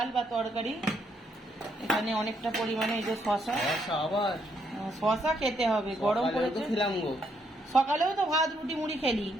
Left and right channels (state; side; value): normal; both; correlation 0.74